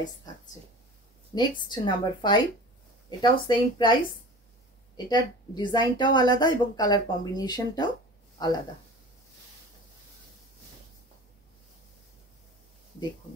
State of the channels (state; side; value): normal; both; correlation 0.38